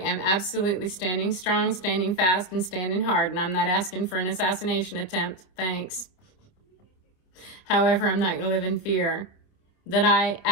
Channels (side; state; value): right; late; 27 ms